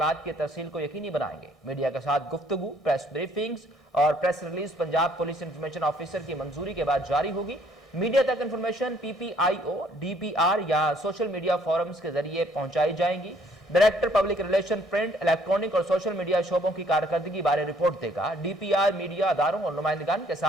की तरसील को यकीनी बनाएंगे। मीडिया के साथ गुफ्तगू, प्रेस ब्रीफिंग्स और press release Punjab police information officer की मंजूरी के बाद जारी होगी। मीडिया तक इंफॉर्मेशन PPIO, DPR या सोशल मीडिया फोरम्स के जरिए पहुंचाई जाएंगी। Director public relation print, electronic और सोशल मीडिया शोबों की कारकर्दगी बारे रिपोर्ट देगा। DPR मीडिया अदारों और नुमाइंदगान के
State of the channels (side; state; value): both; normal; correlation 0.63